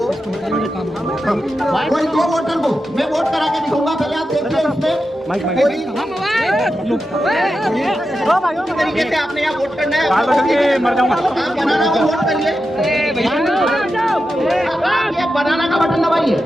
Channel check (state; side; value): normal; both; correlation 0.90